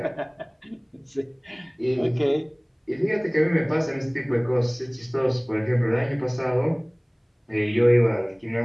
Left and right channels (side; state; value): both; identical; correlation 1.00